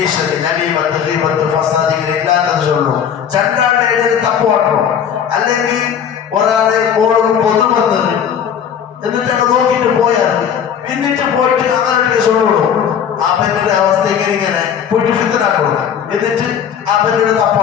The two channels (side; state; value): right; quieter; 8.2 dB